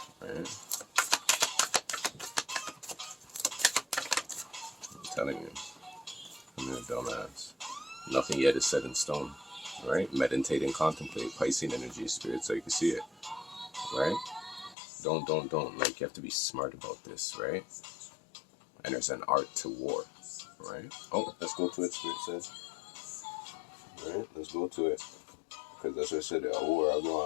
Right? I'm telling you, I'm a dumbass. Nothing yet is set in stone, right? Meditate and contemplate Piscean energy, spirit, so you can see it, right? Don't. Like, you have to be smart about this, right? And there's an art to war, right? Oh, let's go to it, spirit says. Right? Let's go to it. Because that's what I said, a war I go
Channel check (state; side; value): drops out; right; at 14.8 s